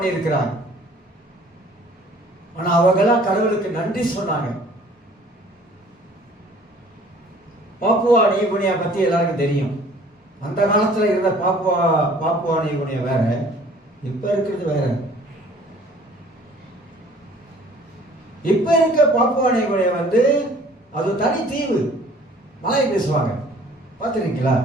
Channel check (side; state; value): both; normal; correlation 0.53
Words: இருக்கிறாங்க. ஆனா அவங்கெல்லாம் கடவுளுக்கு நன்றி சொன்னாங்க. பாப்புவா நியூகினியா பத்தி எல்லாருக்கும் தெரியும். அந்த காலத்துல இருந்த பாப்புவா நியூகினியா வேற, இப்ப இருக்கிறது வேற. இப்ப இருக்க பாப்புவா நியூகினியா அது தனி தீவு, மலை பேசுவாங்க. பார்த்துருக்கீங்களா?